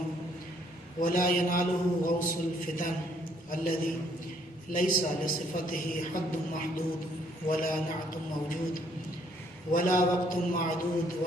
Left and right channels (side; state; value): both; normal; correlation 0.66